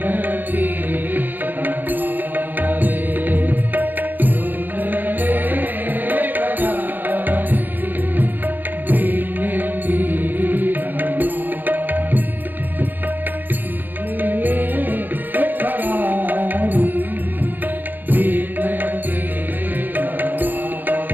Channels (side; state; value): left; late; 0.088 ms